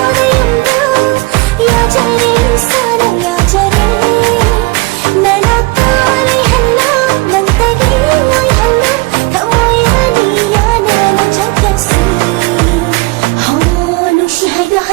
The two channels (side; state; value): left; quieter; 24.3 dB